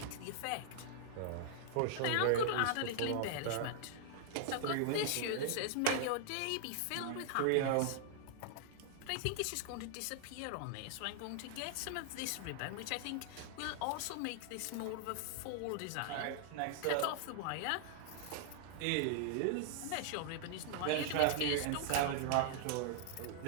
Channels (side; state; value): both; different; correlation 0.00